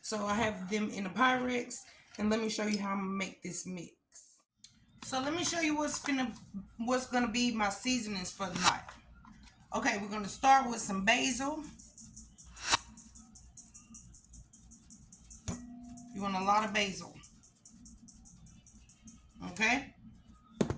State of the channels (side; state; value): both; identical; correlation 1.00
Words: So, I have them in a Pyrex. And let me show you how I'm going to make this mix. So let me show you what's gonna be my seasonings for the night. Okay, we're gonna start with some basil. You want a lot of basil. Okay.